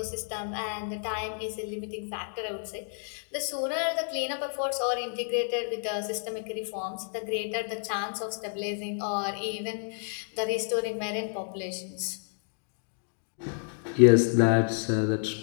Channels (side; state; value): right; silent; digital silence